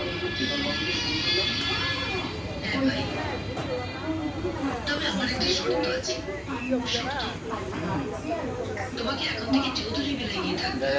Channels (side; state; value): both; identical; correlation 1.00